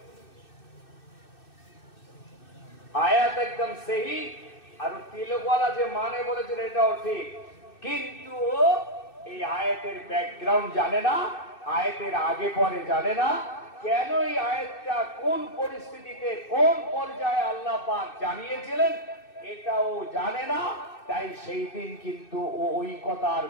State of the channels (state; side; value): late; right; 2.6 ms